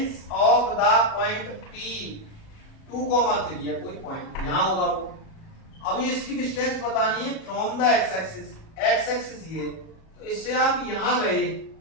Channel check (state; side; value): late; right; 37 ms